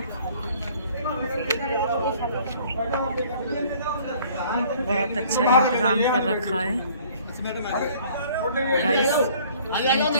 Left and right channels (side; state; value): both; inverted; correlation -0.55